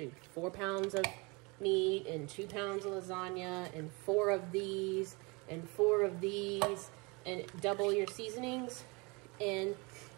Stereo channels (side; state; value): left; quieter; 28.0 dB